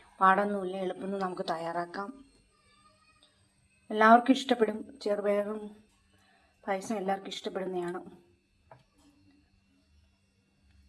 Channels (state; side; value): identical; both; correlation 1.00